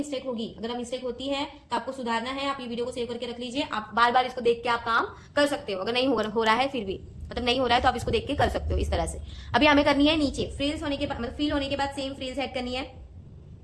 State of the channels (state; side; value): identical; both; correlation 1.00